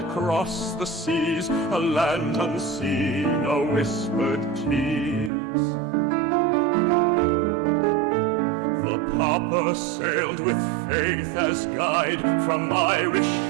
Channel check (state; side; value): drops out; left; at 5.3 s